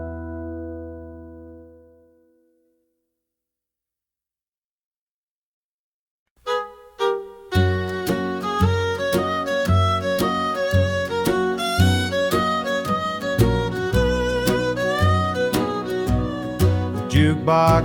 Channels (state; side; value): identical; both; correlation 1.00